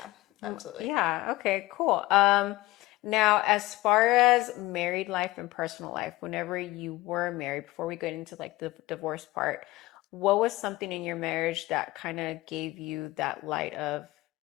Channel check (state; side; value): quieter; right; 19.1 dB